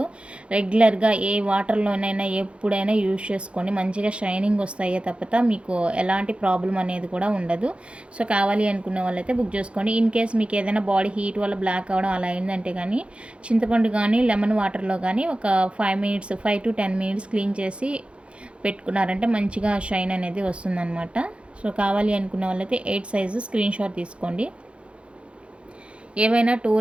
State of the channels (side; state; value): left; late; 0.059 ms